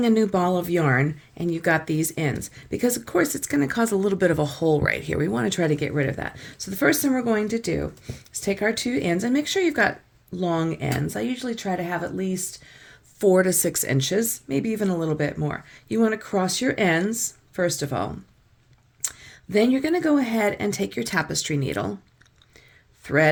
a new ball of yarn and you've got these ends, because of course it's going to cause a little bit of a hole right here. We want to try to get rid of that. So the first thing we're going to do is take our two ends and make sure you've got long ends. I usually try to have at least 4 to 6 inches, maybe even a little bit more. You want to cross your ends, first of all. Then you're going to go ahead and take your tapestry needle,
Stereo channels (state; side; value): identical; both; correlation 1.00